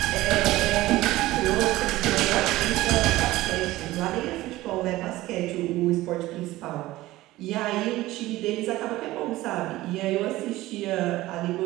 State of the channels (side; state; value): left; quieter; 17.3 dB